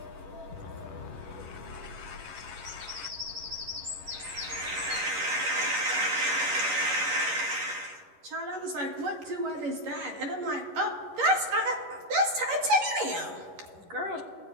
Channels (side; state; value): left; late; 11 ms